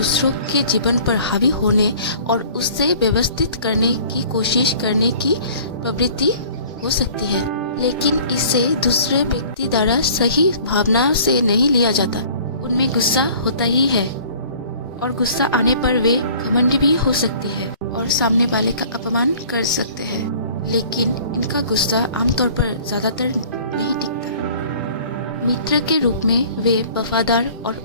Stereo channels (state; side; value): inverted; both; correlation -0.49